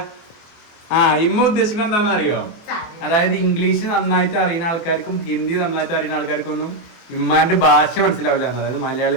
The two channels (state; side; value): late; right; 24 ms